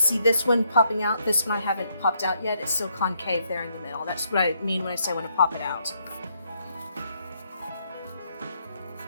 see, this one popping out, this one I haven't popped out yet. It's still concave there in the middle. That's what I mean when I say I want to pop it out.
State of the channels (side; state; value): both; inverted; correlation -0.74